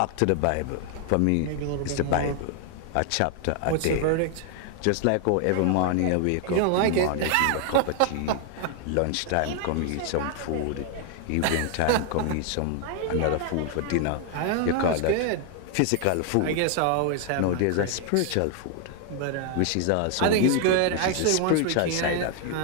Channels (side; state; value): both; different; correlation 0.00